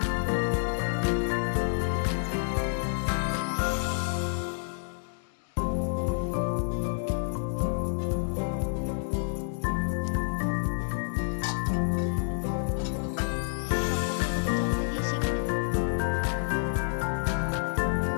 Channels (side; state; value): right; silent; digital silence